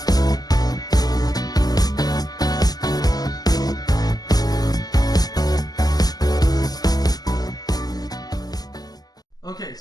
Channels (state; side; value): late; right; 0.19 ms